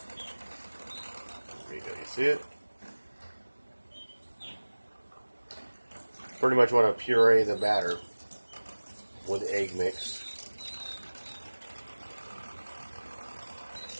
There you go. You see it? Pretty much want to puree the batter with the egg mix.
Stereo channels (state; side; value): inverted; both; correlation -1.00